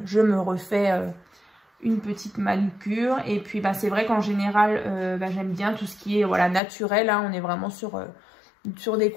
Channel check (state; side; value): drops out; right; at 6.6 s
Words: je me refais une petite manucure. Et puis, c'est vrai qu'en général, j'aime bien tout ce qui est naturel. Hein. On est vraiment sur des